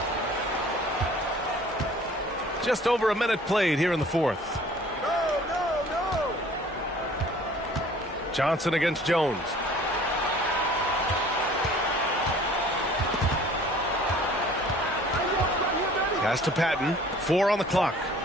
Just over a minute played here in the fourth. Johnson against Jones. Pass to Patton. 4 on the clock.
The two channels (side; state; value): both; normal; correlation 0.51